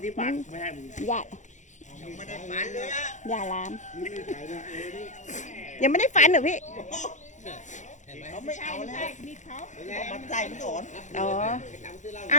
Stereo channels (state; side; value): late; right; 0.35 ms